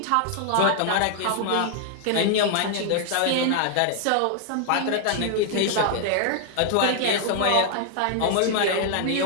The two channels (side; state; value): both; different; correlation 0.00